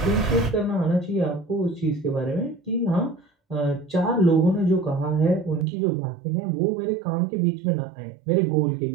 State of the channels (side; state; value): left; drops out; at 5.7 s